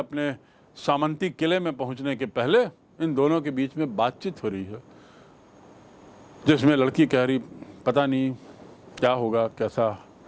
सामंती किले में पहुंचने के पहले इन दोनों के बीच में बातचीत हो रही है, जिसमें लड़की कह रही, पता नहीं क्या होगा, कैसा.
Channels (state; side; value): identical; both; correlation 1.00